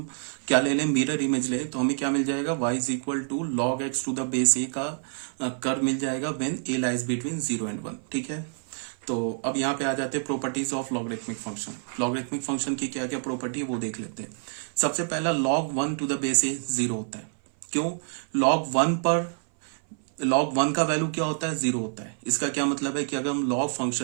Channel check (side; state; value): left; silent; 57 dB below the other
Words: क्या ले लें मिरर इमेज लें तो हमें क्या मिल जाएगा y is equal to log x to the base a का कर्व मिल जाएगा when a lies between 0 and 1। ठीक है, तो अब यहाँ पे आ जाते हैं properties of logarithmic function. Logarithmic function की क्या क्या प्रॉपर्टी है वो देख लेते हैं। सबसे पहला log 1 to the base a 0 होता है। क्यों? log 1 पर log 1 का वैल्यू क्या होता है? 0 होता है। इसका क्या मतलब है कि अगर हम log